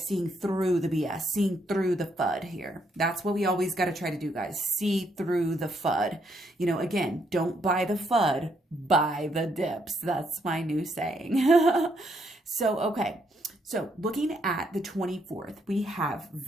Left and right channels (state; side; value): normal; both; correlation 0.74